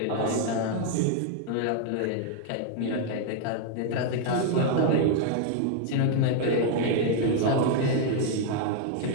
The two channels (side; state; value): both; different; correlation 0.00